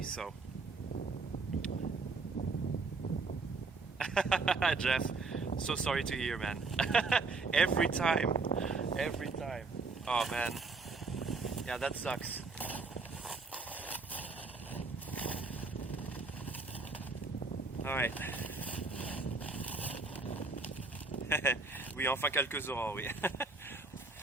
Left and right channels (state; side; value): quieter; left; 3.9 dB